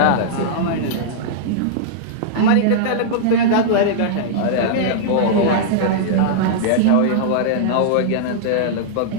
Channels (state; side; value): different; both; correlation -0.02